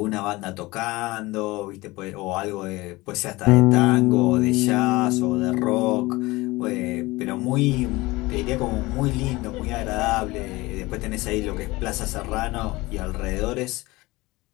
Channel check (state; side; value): quieter; right; 21.2 dB